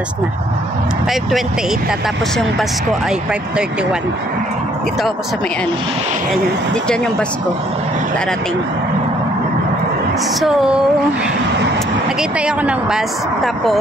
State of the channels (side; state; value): both; normal; correlation 0.64